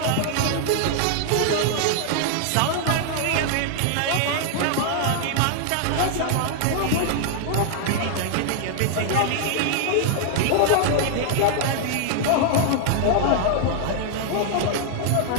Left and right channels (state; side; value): different; both; correlation 0.00